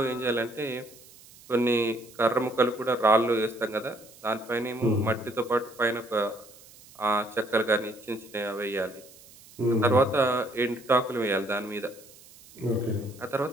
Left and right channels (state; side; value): noise; right; hiss, 22 dB below the sound